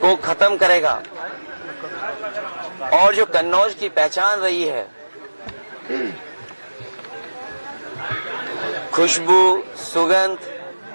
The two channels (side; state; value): both; inverted; correlation -1.00